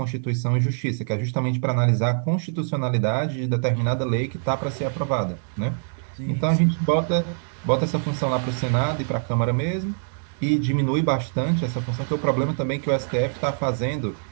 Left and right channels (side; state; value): left; silent; 62 dB below the other